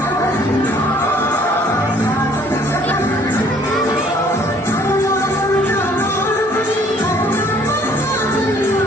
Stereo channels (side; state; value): both; normal; correlation 0.59